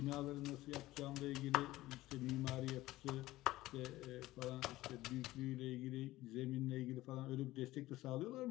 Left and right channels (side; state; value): right; quieter; 17.1 dB